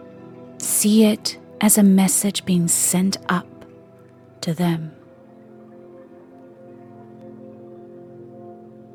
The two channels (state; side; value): identical; both; correlation 1.00